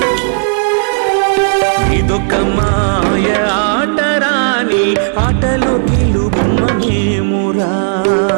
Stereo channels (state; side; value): silent; left; digital silence